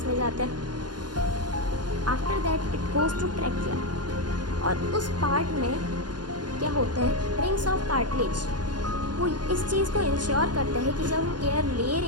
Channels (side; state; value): left; late; 0.70 ms